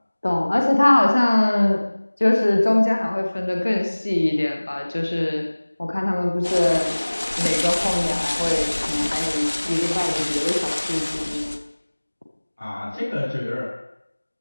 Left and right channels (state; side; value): inverted; both; correlation -1.00